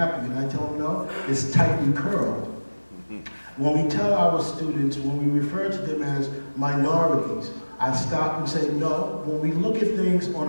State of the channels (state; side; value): inverted; both; correlation -1.00